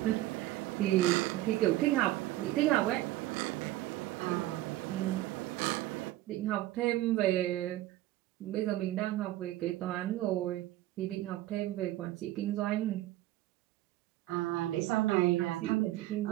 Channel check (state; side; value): quieter; left; 15.8 dB